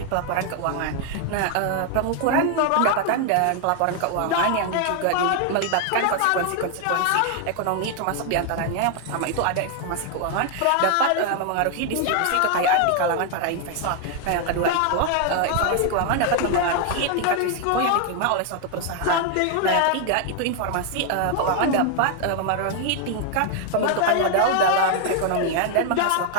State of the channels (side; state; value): both; different; correlation 0.00